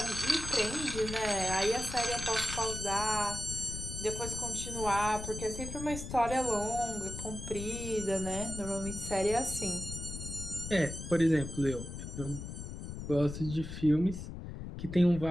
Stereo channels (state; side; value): noise; left; rumble, 8 dB below the sound